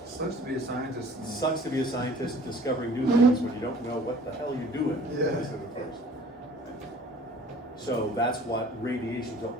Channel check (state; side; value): normal; both; correlation 0.50